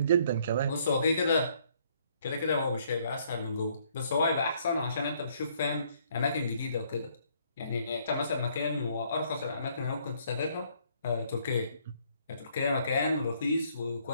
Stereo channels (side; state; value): both; inverted; correlation -0.66